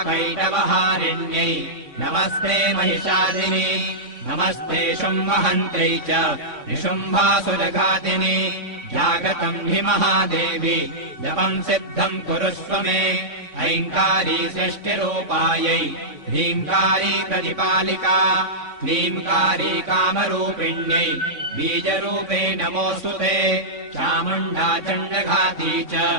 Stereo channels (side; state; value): left; late; 3.6 ms